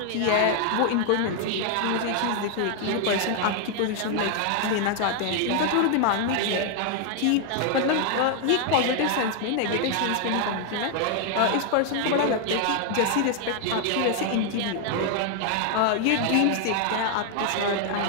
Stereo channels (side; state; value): both; different; correlation 0.00